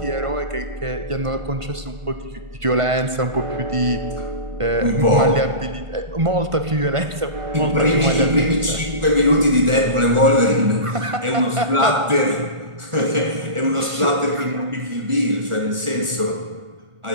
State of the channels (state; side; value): late; left; 1.4 ms